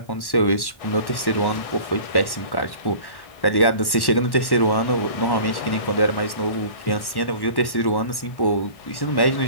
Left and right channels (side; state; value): right; late; 1.1 ms